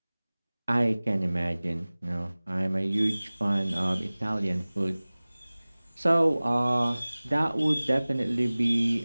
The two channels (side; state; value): both; inverted; correlation -0.99